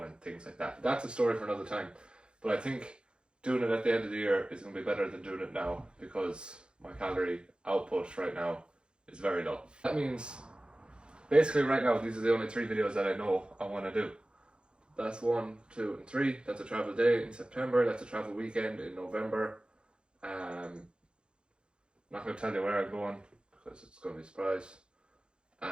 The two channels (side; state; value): left; late; 0.052 ms